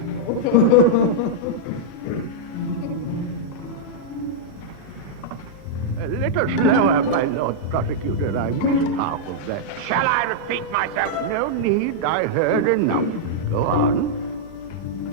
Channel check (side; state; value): both; normal; correlation -0.04